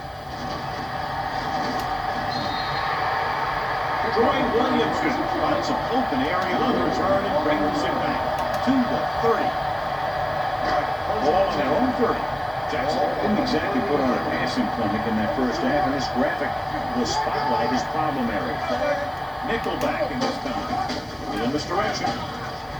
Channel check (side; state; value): left; noise; hiss, 30 dB below the sound